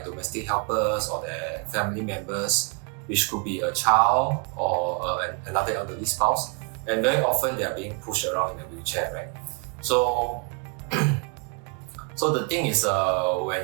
helpers or their family members, which could be a child or another elderly spouse. And very often they are being pushed around in a wheelchair, right? So, so the thing is,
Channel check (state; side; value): quieter; left; 34.8 dB